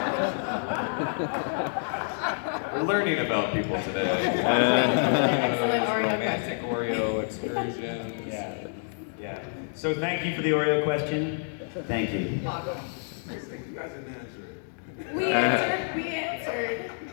We're learning about people today. Excellent Oreo Romantic Oreo excursions. Yeah. So thank you for the Oreo question. Thank you. You guys didn't answer it. We answered.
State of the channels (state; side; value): silent; right; digital silence